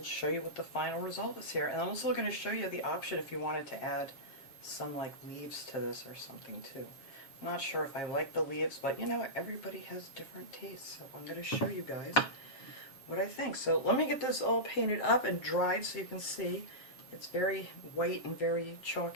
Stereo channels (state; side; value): late; right; 7.4 ms